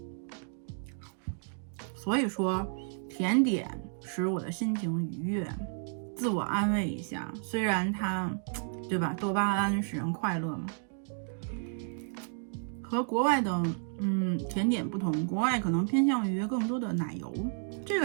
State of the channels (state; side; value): silent; left; 57 dB below the other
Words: 所以说甜点使我的心情愉悦，自我安慰一下，虽然它对吧，多巴胺使人快乐嘛。和国外的甜点不同，国外可能偏向于更多的奶油，这